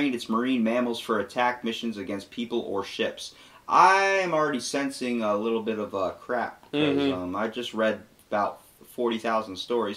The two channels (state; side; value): identical; both; correlation 1.00